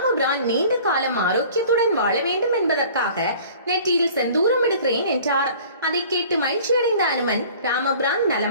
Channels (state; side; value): inverted; both; correlation -0.47